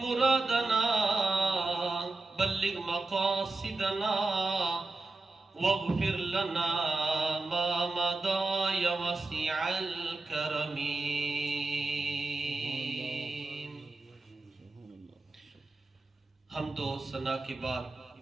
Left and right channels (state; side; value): quieter; left; 3.3 dB